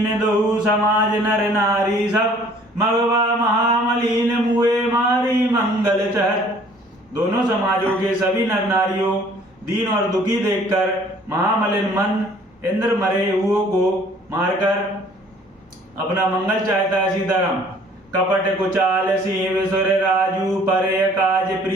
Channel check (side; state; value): both; normal; correlation 0.55